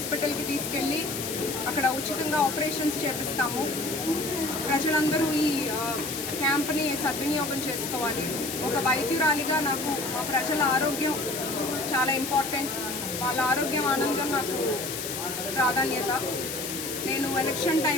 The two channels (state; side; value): noise; left; hiss, 5 dB below the sound